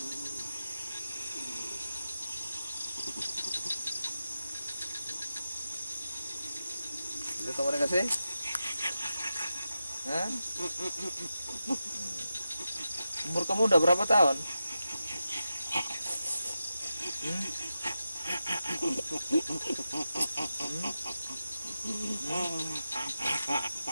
Bisa komunikasi? Hah? Umur kamu udah berapa tahun?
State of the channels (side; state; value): both; inverted; correlation -0.91